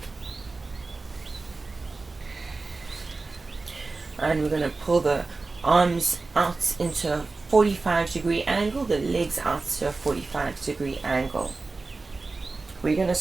And we're going to pull the arms out into a 45-degree angle, the legs out to a 45-degree angle. We're going to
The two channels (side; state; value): left; quieter; 3.7 dB